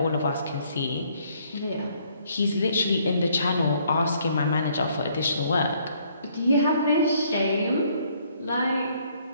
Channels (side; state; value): both; inverted; correlation -0.66